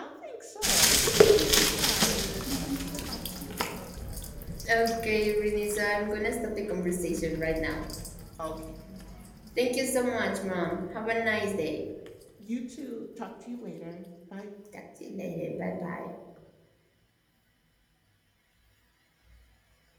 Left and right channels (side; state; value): both; identical; correlation 1.00